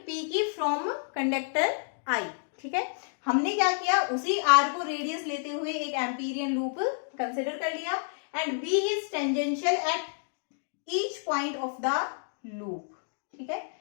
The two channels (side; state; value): right; silent; digital silence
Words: P की फ्रॉम कंडक्टर I, ठीक है। हमने क्या किया, उसी R को रेडियस लेते हुए एक एम्पीरियन लूप कंसिडर कर लिया and B is tangential at each point of the loop, ठीक है।